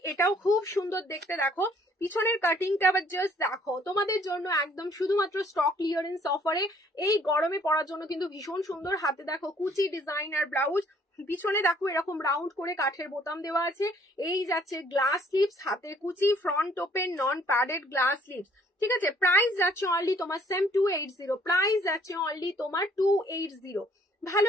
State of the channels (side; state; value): both; normal; correlation 0.61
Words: এটাও খুব সুন্দর দেখতে, দেখো পিছনের কাটিংটা আবার জাস্ট দেখো, তোমাদের জন্য একদম শুধুমাত্র স্টক ক্লিয়ারেন্স অফারে এই গরমে পরার জন্য কিন্তু ভীষণ সুন্দর। হাতে দেখো কুচি ডিজাইন আর ব্লাউজ, পিছনে দেখো এরকম রাউন্ড করে কাঠের বোতাম দেওয়া আছে। এই যাচ্ছে গ্লাস স্লিভস, হাতে কুচি, front open, non padded, glass sleeves, ঠিক আছে? প্রাইস যাচ্ছে অনলি তোমার সেম 280, প্রাইস যাচ্ছে অনলি তোমার 280।